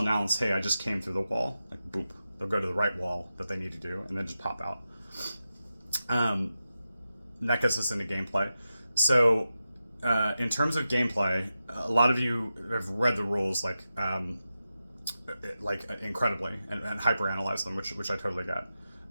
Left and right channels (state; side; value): inverted; both; correlation -0.91